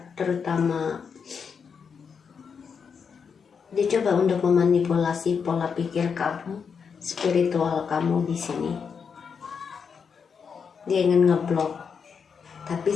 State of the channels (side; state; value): right; quieter; 6.2 dB